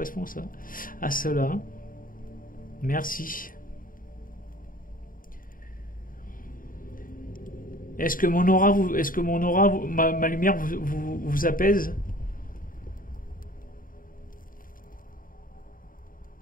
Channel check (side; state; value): right; late; 0.40 ms